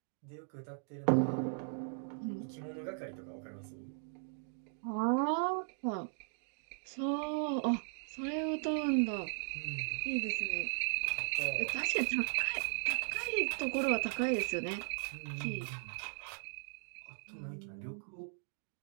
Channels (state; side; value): silent; left; digital silence